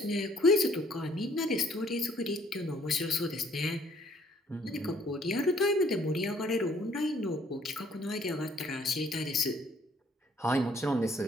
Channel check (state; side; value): normal; both; correlation 0.62